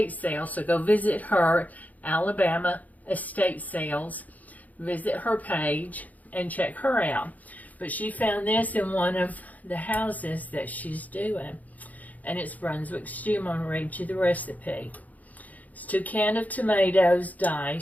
sales, so go visit her, Alabama Estate Sales. Visit her page and check her out. But she found this in one of the houses that she's doing, and it's Brunswick Stew. I'm going to read you the recipe. It's 2 cans of tomatoes,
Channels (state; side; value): late; right; 0.077 ms